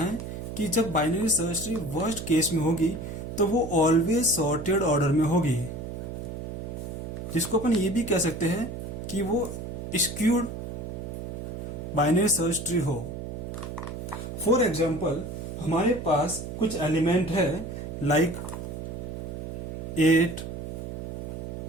कि जब binary search tree worst case में होगी तो वो ऑलवेज सॉर्टेड ऑर्डर में होगी, जिसको अपन ये भी कह सकते हैं कि वो स्क्यूड बाइनरी सर्च ट्री हो। फॉर एग्जाम्पल, हमारे पास कुछ एलिमेंट है लाइक 8,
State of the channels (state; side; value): noise; right; hum, 7 dB below the sound